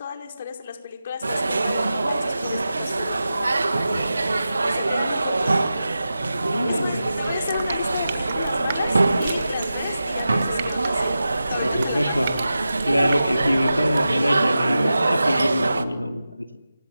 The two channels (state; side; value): inverted; both; correlation -0.92